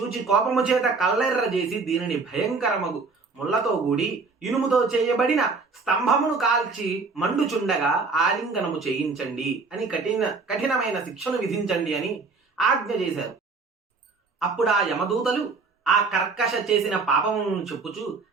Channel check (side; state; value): left; quieter; 4.3 dB